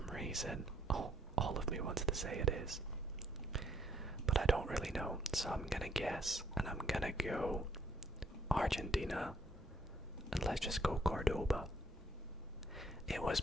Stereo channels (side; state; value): both; normal; correlation 0.68